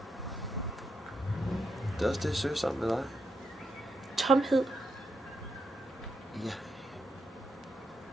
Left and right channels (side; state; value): both; normal; correlation 0.81